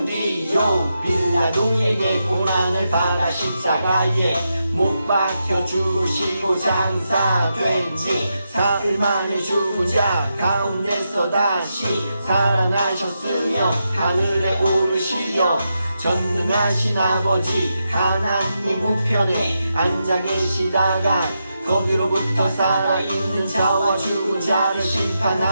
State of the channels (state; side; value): inverted; both; correlation -0.86